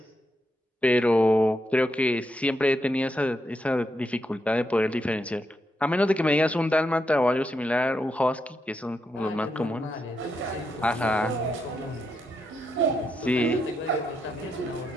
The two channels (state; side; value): normal; both; correlation 0.82